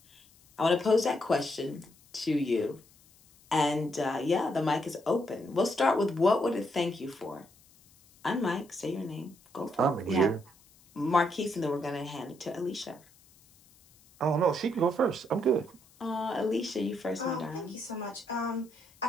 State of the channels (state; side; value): noise; left; hiss, 28 dB below the sound